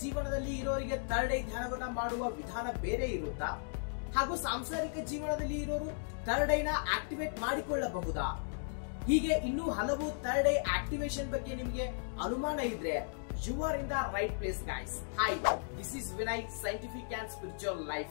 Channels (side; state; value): right; silent; digital silence